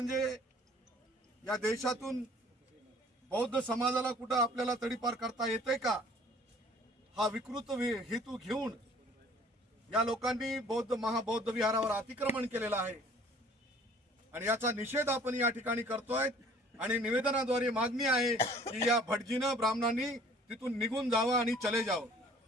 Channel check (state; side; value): normal; both; correlation 0.53